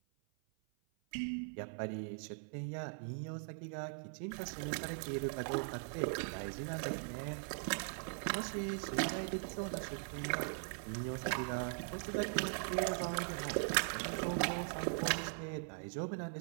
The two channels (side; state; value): left; silent; 51 dB below the other